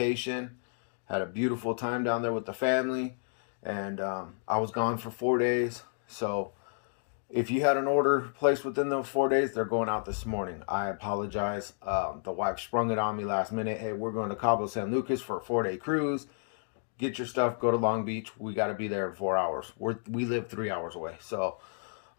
had a beautiful time down there with the family, and I was gone for 4 days. So if you had an order placed within those 4 days, they're going out this morning. I apologize. The wife sprung it on me last minute. Hey, we're going to Cabo San Lucas for a 4-day cruise. Get your stuff, go to Long Beach. We got to be there in 4 hours. We live 3 hours away. So,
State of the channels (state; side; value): silent; right; digital silence